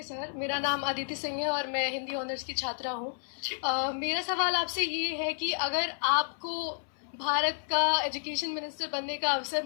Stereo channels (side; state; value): right; silent; 57 dB below the other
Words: सर, मेरा नाम अदिति सिंह है और मैं हिंदी ऑनर्स की छात्रा हूँ। मेरा सवाल आपसे ये है कि अगर आपको भारत का एजुकेशन मिनिस्टर बनने का अवसर